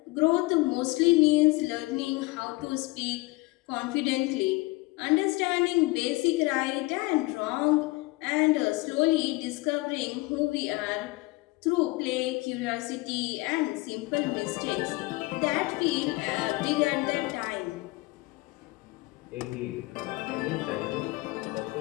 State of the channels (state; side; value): quieter; right; 22.4 dB